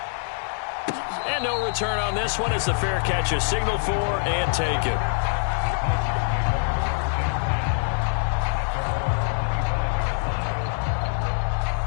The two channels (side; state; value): right; silent; digital silence